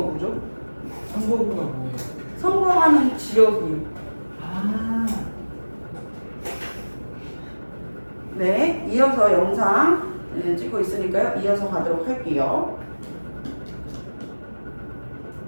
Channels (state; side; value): inverted; both; correlation -1.00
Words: 선거구가 뭐예요? 선거하는 지역이요. 아, 네, 이어서 영상 찍고 있으니까요. 이어서 가도록 할게요.